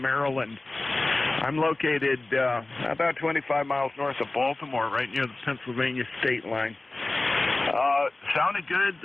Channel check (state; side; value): quieter; right; 3.0 dB